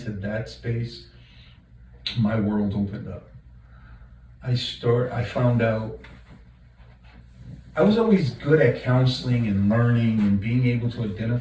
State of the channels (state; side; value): identical; both; correlation 1.00